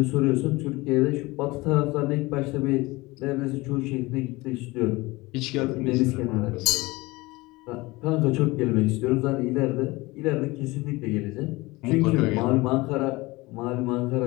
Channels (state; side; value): quieter; right; 22.0 dB